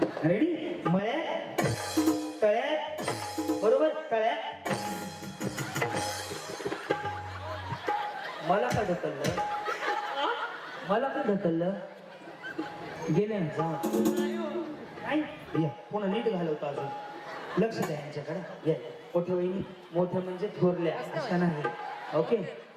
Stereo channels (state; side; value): identical; both; correlation 1.00